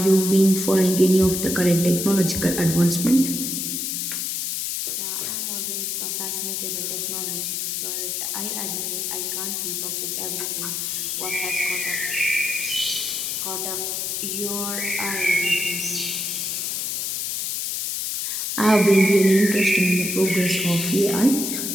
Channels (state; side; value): noise; left; hiss, 2 dB below the sound